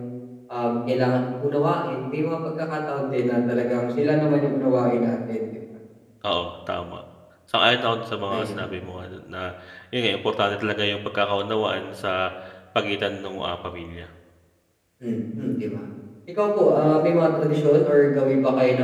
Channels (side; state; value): both; identical; correlation 1.00